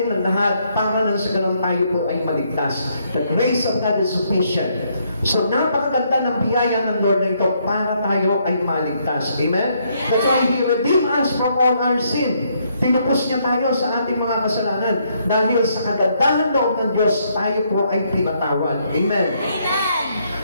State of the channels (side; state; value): both; inverted; correlation -0.72